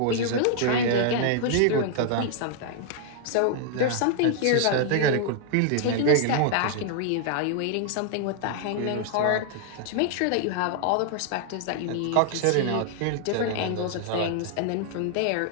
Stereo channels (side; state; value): both; different; correlation 0.00